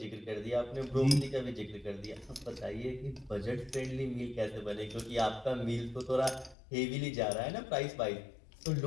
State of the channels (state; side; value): drops out; right; at 6.6 s